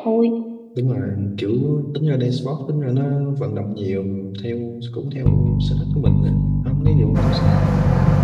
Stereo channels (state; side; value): identical; both; correlation 1.00